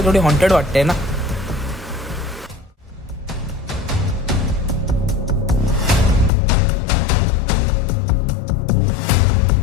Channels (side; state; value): right; drops out; at 6.3 s